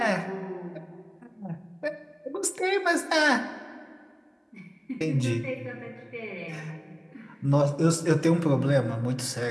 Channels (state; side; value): identical; both; correlation 1.00